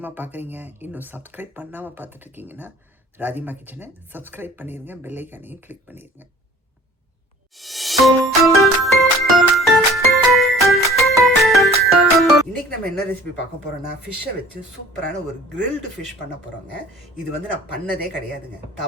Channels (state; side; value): normal; both; correlation 0.49